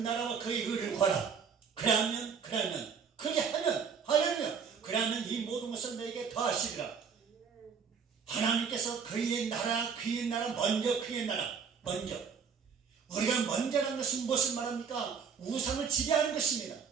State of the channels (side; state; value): left; quieter; 6.3 dB